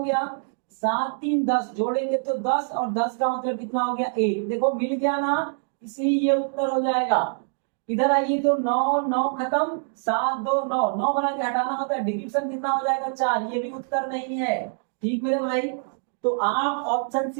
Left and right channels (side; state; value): left; silent; digital silence